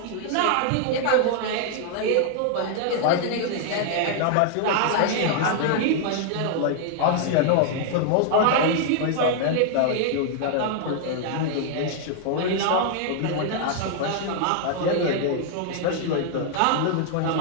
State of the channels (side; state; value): both; different; correlation 0.00